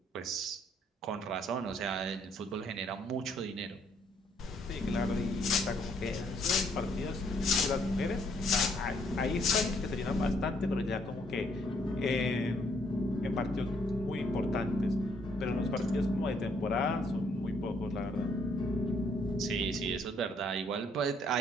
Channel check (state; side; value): normal; both; correlation 0.68